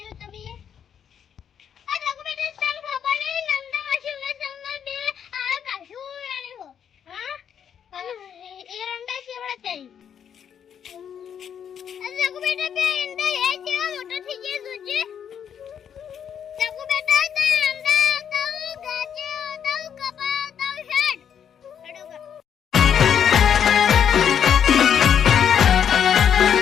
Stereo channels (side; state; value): right; quieter; 8.4 dB